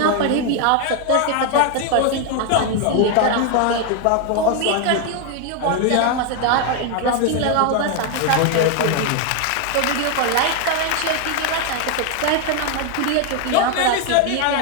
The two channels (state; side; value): different; both; correlation 0.01